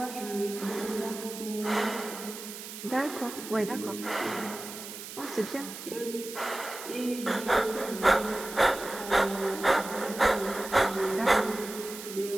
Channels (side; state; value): right; noise; hiss, 11 dB below the sound